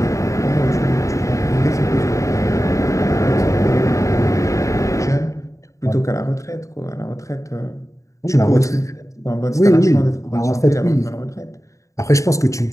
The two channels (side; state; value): right; late; 0.15 ms